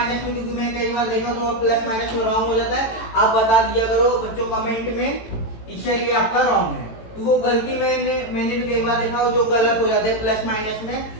में, क्योंकि मैं कई बार देखा तो प्लस माइनस में रॉन्ग हो जाता है, आप बता दिया करो बच्चों कमेंट में, इससे ये आपका रॉन्ग है। तो वो गलती मैंने भी कई बार देखा जो गलत हो जाता है प्लस माइनस में।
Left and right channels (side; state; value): right; late; 18 ms